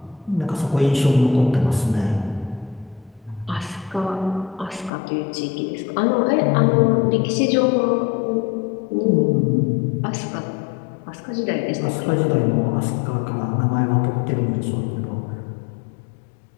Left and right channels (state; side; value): drops out; right; at 4.9 s